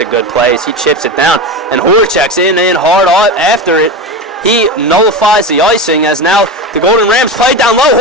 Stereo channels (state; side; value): normal; both; correlation 0.22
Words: a good play as he chips it down. And Horacek's in hard after it. He nullifies the icing, as now the Golden Rams play down